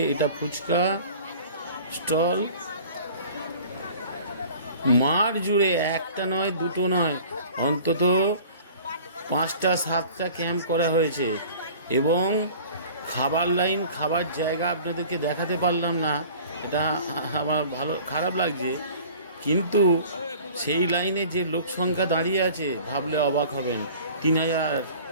এটা ফুচকা স্টল। মাঠ জুড়ে একটা নয়, দুটো নয়, অন্তত 5টা 7টা ক্যাম্প করা হয়েছে এবং খাবার লাইন, খাবার জায়গা আপনাদেরকে দেখাতে পারলাম না, এটা আমার খারাপ লাগছে। কিন্তু সেই লাইনে যে লোক সংখ্যা দাঁড়িয়ে আছে ভাবলে অবাক হবেন। 3000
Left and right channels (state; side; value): inverted; both; correlation -0.46